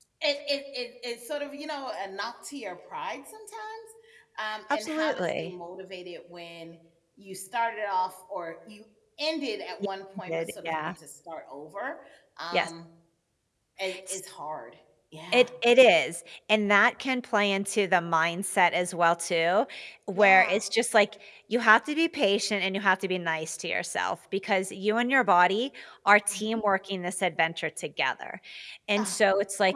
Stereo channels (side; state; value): both; identical; correlation 1.00